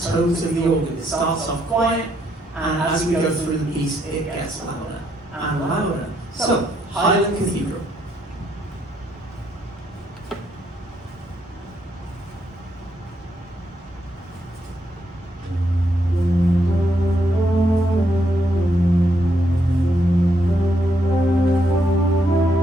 tones of the organ. It starts off quiet, and as we go through the piece, it gets louder and louder. So, Highland Cathedral.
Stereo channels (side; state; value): both; normal; correlation 0.75